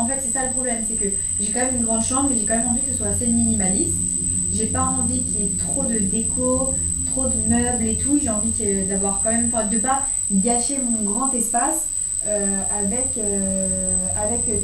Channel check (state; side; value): identical; both; correlation 1.00